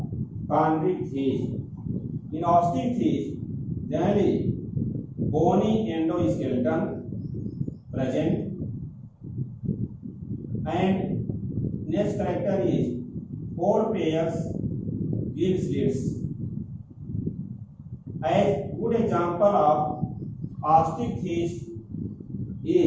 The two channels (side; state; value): both; identical; correlation 1.00